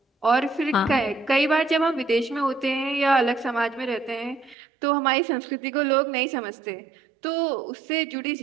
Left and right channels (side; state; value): left; drops out; at 4.5 s